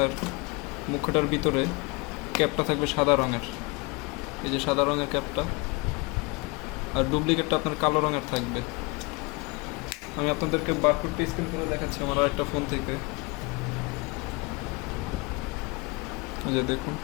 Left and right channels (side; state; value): right; quieter; 27.3 dB